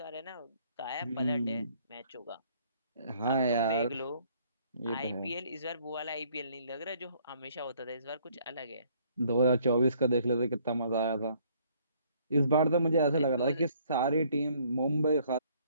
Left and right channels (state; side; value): inverted; both; correlation -0.63